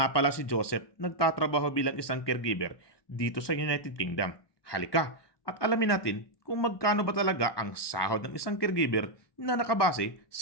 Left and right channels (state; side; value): late; right; 1.2 ms